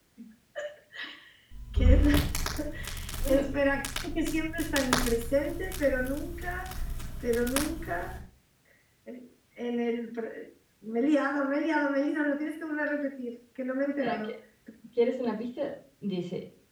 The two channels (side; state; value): both; identical; correlation 1.00